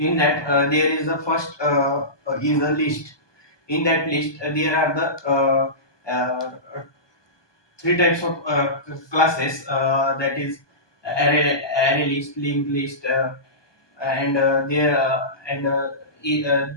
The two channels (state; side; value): late; right; 1.2 ms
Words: that there is the first is a list. In that list there are the three types of classes, that is array list, linked list, and there and e- uh,